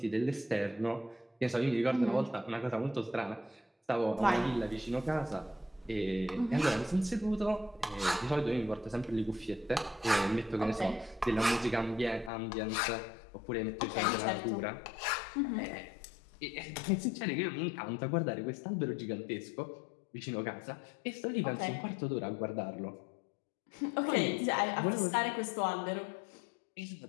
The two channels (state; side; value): drops out; right; at 12.3 s